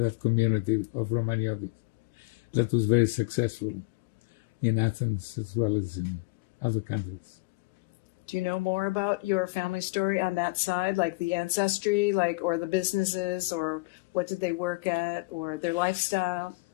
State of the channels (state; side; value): quieter; right; 25.8 dB